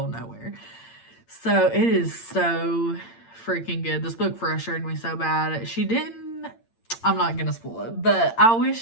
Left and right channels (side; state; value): right; late; 8.8 ms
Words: of nowhere. So it is so freaking good. This book frustrated me so bad. I'm not gonna spoil it, but I